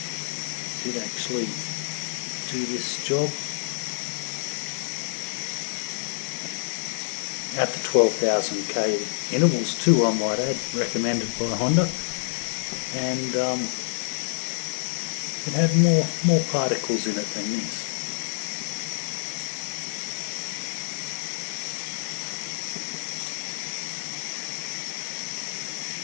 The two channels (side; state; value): right; silent; digital silence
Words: actually do this job at the 12,000k intervals too, I might add, recommended by Honda, and it had more particles in it than this.